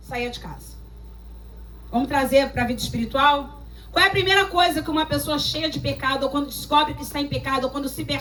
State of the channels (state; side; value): identical; both; correlation 1.00